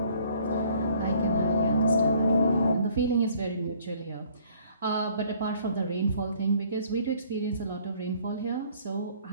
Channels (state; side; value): inverted; both; correlation -0.59